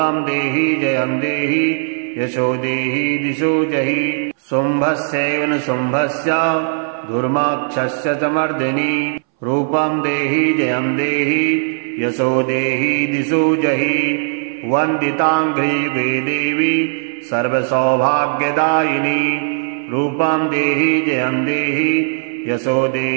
देहि जयं देहि यशो देहि दिशो जहि शुम्भस्यैव न शुम्भस्य धूर्माक्षस्य च मर्दिनी। रूपं देहि जयं देहि यशो देहि दिशो जहि वन्दिताङ्घ्रियुगे देवी सर्वसौभाग्यदायिनी। रूपं देहि जयं देहि यशो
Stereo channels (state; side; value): silent; left; 65 dB below the other